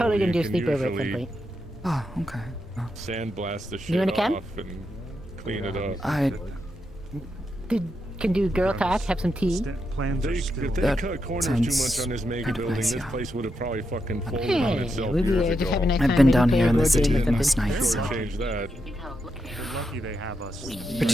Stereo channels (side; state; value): both; normal; correlation 0.84